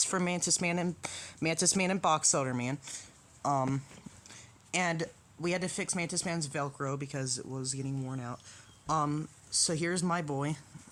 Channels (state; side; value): identical; both; correlation 1.00